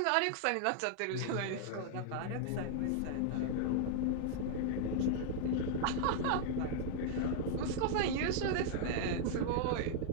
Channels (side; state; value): both; different; correlation 0.00